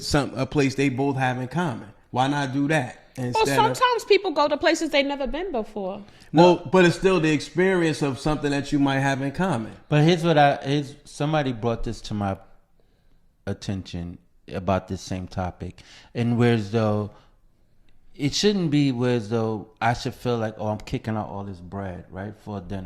a place they both have in common. Why not do that? Well, sometimes people go to places they've never been before. Well, but it's still the experience of something that you might have in common. But somebody brought this to my attention about this same topic, and whereas though it shouldn't be whereas though I should feel like, oh, I'm kicking out all this bread, right, for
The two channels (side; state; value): both; identical; correlation 1.00